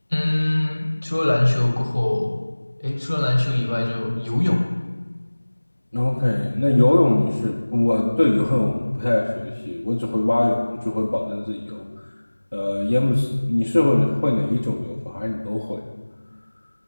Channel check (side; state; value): both; inverted; correlation -1.00